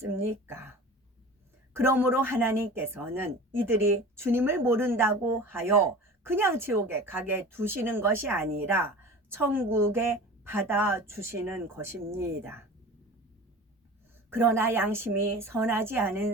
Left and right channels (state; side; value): normal; both; correlation 0.37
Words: 그러므로 하나님께서는 이들이 주님을 모른다고 하여 그냥 지옥에 가게 두시는 것이 아니라 천국에 받아주시는 것입니다. 그러나 양심이 선하지